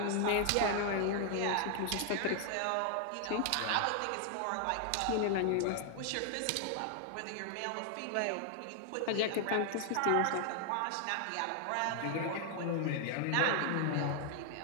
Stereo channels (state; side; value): different; both; correlation 0.00